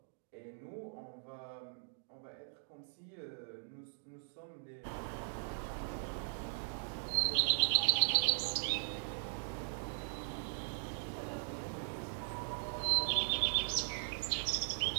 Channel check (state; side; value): silent; left; digital silence